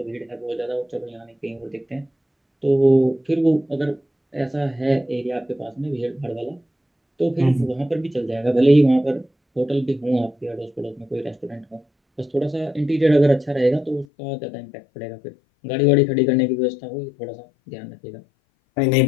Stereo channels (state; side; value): drops out; right; at 14.1 s